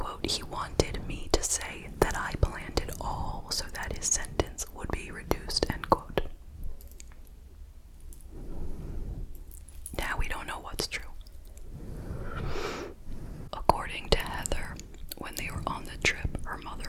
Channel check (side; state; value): both; identical; correlation 1.00